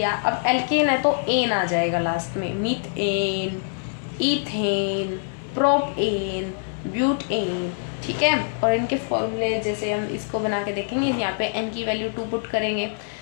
अब एल्केन है तो एन आ जाएगा लास्ट में, मीथेन, इथेन, प्रोपेन, ब्यूटेन। ठीक है, और इनके फॉर्मूले जैसे हम इसको बना के देखेंगे, यहाँ पे n की वैल्यू 2 पुट करेंगे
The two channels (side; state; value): right; silent; 62 dB below the other